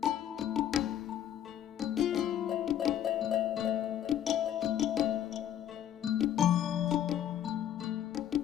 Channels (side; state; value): right; quieter; 10.6 dB